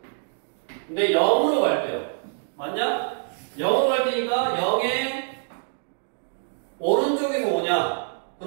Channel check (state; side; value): silent; left; digital silence